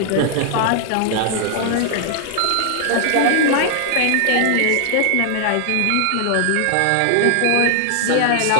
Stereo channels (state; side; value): different; both; correlation 0.00